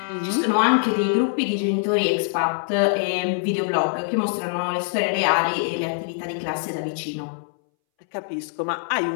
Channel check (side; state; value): right; silent; 62 dB below the other